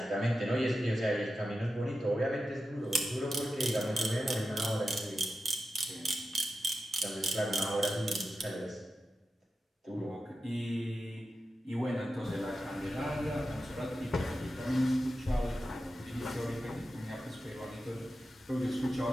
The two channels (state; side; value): normal; both; correlation 0.91